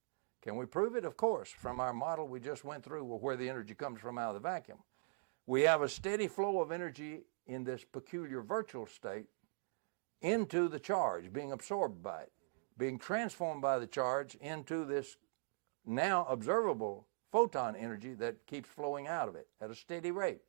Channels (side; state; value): left; silent; digital silence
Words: Can we prove it? Of course, from our model we just went through where the energy comes from out of the vacuum. We have a steady flow of energy in this peculiar virtual state into the charge, being absorbed by it, being transformed by the charge into this now observable photon energy that keeps flowing out of it at a steady rate.